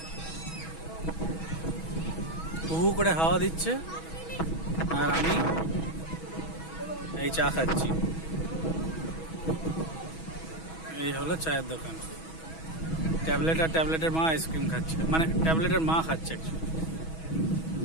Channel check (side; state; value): right; late; 6.2 ms